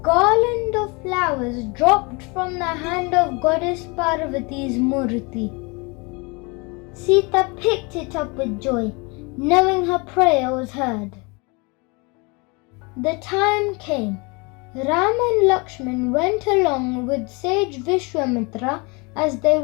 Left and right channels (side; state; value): right; quieter; 28.9 dB